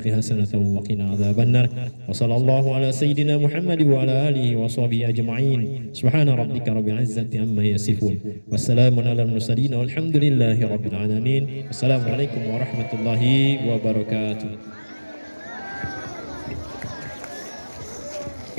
حسنة وقنا عذاب النار. وصلى الله على سيدنا محمد وعلى آله وصحبه أجمعين. سبحان ربك رب العزة عما يصفون والسلام على المرسلين والحمد لله رب العالمين. السلام عليكم ورحمة الله وبركاته.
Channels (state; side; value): inverted; both; correlation -1.00